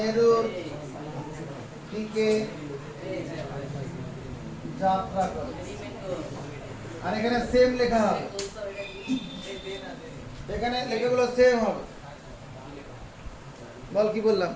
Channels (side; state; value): both; identical; correlation 1.00